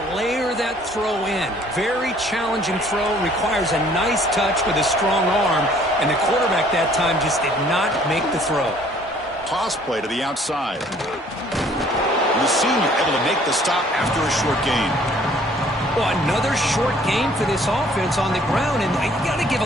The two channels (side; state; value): both; normal; correlation 0.58